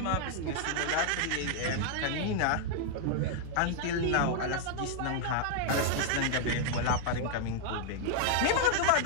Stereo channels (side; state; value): both; different; correlation 0.00